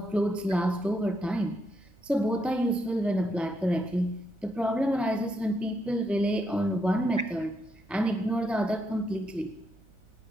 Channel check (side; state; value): right; noise; hum, 28 dB below the sound